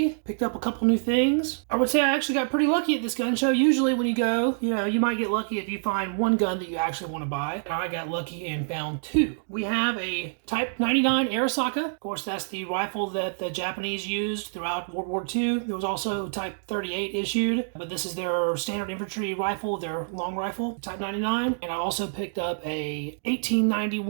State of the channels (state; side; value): silent; left; digital silence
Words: picked up a couple new things. I would say I actually got pretty lucky at this gun show. Usually when you go, you might get lucky if you find one gun that you actually want to buy. I got lucky and found two. We have a Type 99 Arisaka. Of course, that's the rifle that the Japanese used throughout World War II. There was also Type 38 issued, but this is their standard infantry rifle, their long rifle, Type 99. And I also picked up a